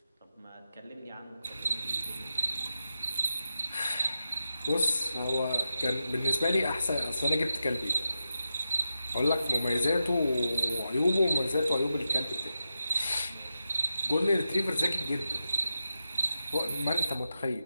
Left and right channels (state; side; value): inverted; both; correlation -0.88